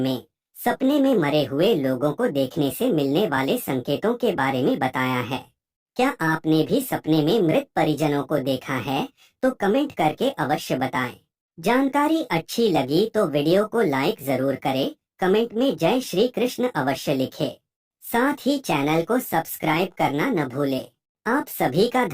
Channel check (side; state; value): both; identical; correlation 1.00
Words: में सपने में मरे हुए लोगों को देखने से मिलने वाले संकेतों के बारे में बताया है। क्या आपने भी सपने में मृत परिजनों को देखा है? तो कमेंट करके अवश्य बताएं। जानकारी अच्छी लगी तो वीडियो को लाइक जरूर करें, कमेंट में जय श्री कृष्ण अवश्य लिखें। साथ ही चैनल को सब्सक्राइब करना न भूलें। आप सभी का